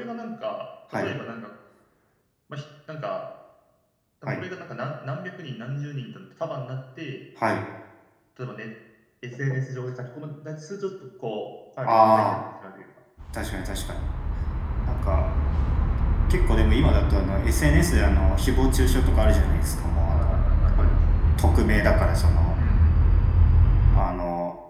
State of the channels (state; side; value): identical; both; correlation 1.00